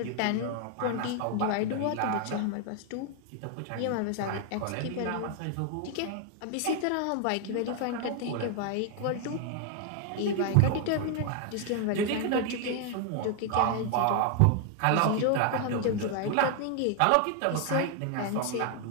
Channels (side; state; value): both; different; correlation 0.00